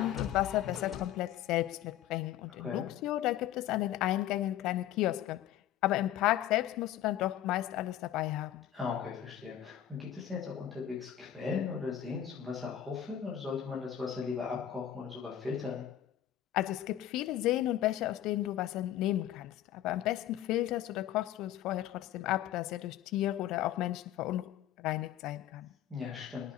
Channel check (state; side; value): quieter; right; 11.7 dB